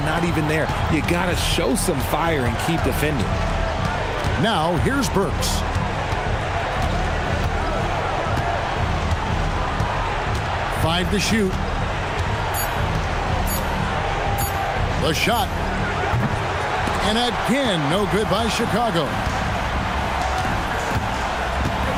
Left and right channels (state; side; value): identical; both; correlation 1.00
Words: even there. You got to show some fire and keep defending. Now, here's Burks. Five to shoot. The shot. And again, no good by Chicago.